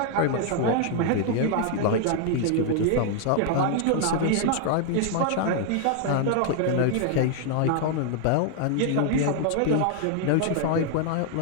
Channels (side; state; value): both; different; correlation 0.00